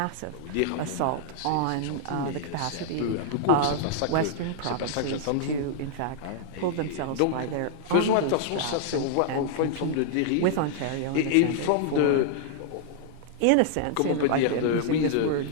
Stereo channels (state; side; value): different; both; correlation -0.01